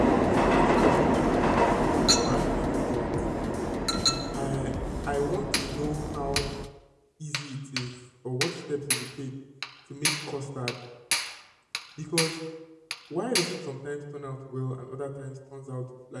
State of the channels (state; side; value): identical; both; correlation 1.00